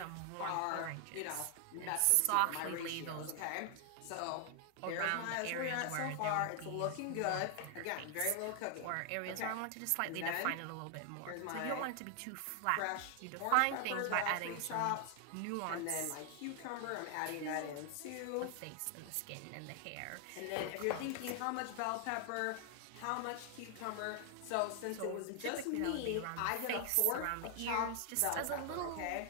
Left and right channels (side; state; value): both; different; correlation 0.00